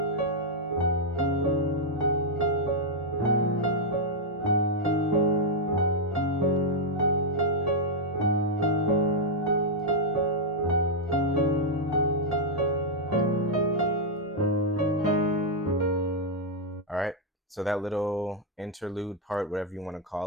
All right, so that little interlude part, whatever you want to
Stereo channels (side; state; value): both; normal; correlation -0.04